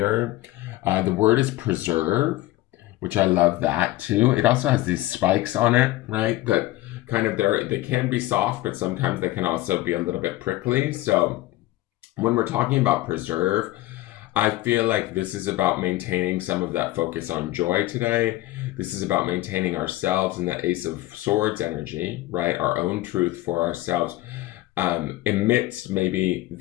The word is preserve, which I love that too. It also has these spikes on it, right? That kind of they can be soft, but sometimes they can also be a little bit prickly. So when we're talking about preserve, I feel like this is about maintaining some of that focus on joy today. This is about maintaining ourselves in that Ace of Swords energy, right? Our own truth for ourselves, amidst maybe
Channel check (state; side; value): quieter; right; 16.9 dB